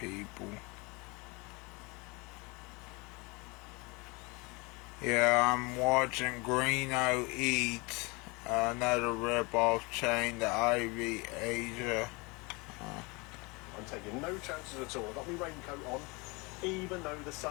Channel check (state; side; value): quieter; right; 26.9 dB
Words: Yeah, I'm watching Greeno eat another rip-off chain, the Ivy Asia. I'm taking no chances at all. I've got my raincoat on, even though the